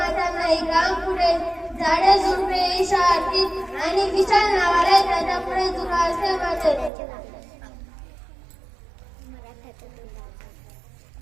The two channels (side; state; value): left; drops out; at 6.9 s